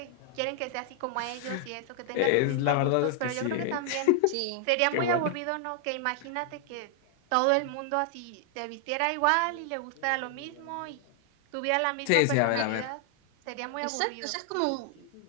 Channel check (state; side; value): different; both; correlation 0.00